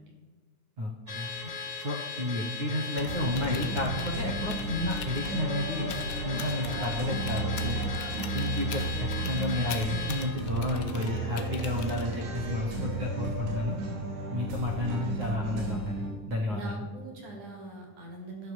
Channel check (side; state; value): left; late; 8.8 ms